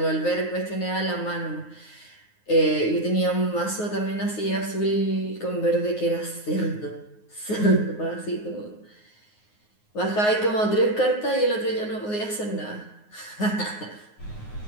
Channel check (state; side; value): late; right; 9.5 ms